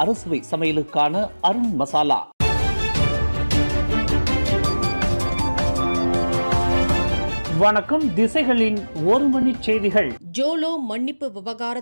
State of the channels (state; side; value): inverted; both; correlation -1.00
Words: அறுசுவை சமையலுக்கான அருண் மசாலா. வணக்கம். திசைகளின் ஒரு மணி செய்திகள். ஜோலோ மன்னிப்பு